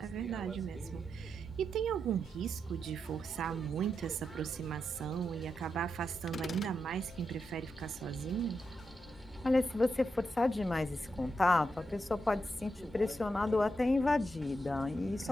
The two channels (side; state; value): both; normal; correlation 0.85